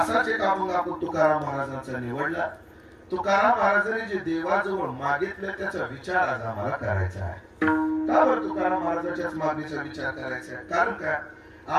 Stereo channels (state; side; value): identical; both; correlation 1.00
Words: एक अभंग आपण तुकाराम महाराजांचा निवडला. तुकाराम महाराजांनी जे देवाजवळ मागितलं त्याचा विचार आज आम्हाला करायचा आहे. का बरं तुकाराम महाराजांच्याच मागणीचा विचार करायचा आहे? कारण काय,